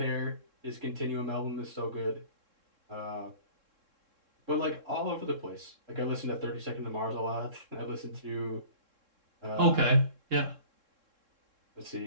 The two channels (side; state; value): left; late; 3.7 ms